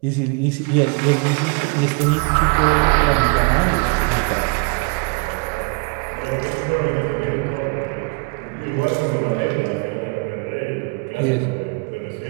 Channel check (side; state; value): left; quieter; 34.5 dB